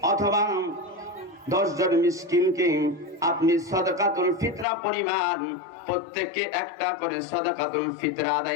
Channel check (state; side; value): drops out; right; at 4.7 s